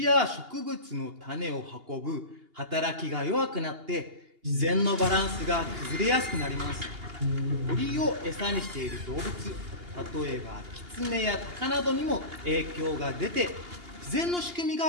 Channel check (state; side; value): late; left; 2.8 ms